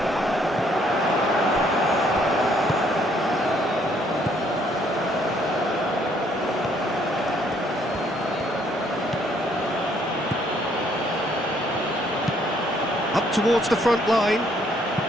Up towards the front line.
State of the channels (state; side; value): normal; both; correlation 0.66